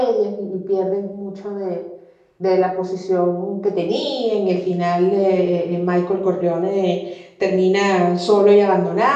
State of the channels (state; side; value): identical; both; correlation 1.00